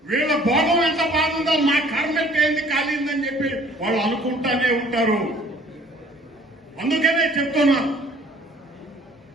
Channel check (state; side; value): normal; both; correlation 0.55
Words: వీళ్ళ భోగం ఎంత బాగుందో మా కర్మ ఏంది కాలిందని చెప్పి వాళ్ళు అనుకుంటానే ఉంటారు. అందుకనే చెప్తున్నా,